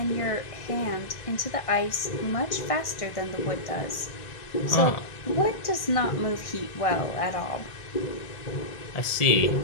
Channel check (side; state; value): right; late; 1.6 ms